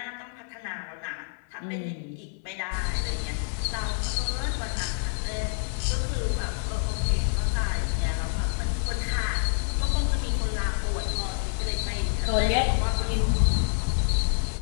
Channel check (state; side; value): silent; right; 60 dB below the other